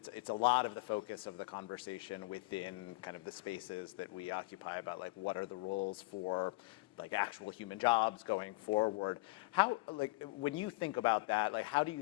focus of the conversation within kind of the spaces that we occupy about like what are the roles for like actual human jobs going forward. How, like, when you think about that, like, how do you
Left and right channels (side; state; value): right; quieter; 25.3 dB